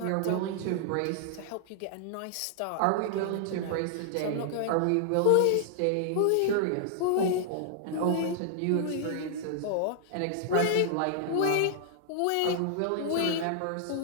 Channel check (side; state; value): both; different; correlation -0.01